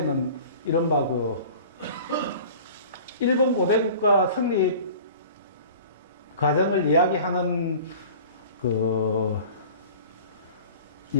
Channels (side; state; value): both; inverted; correlation -0.43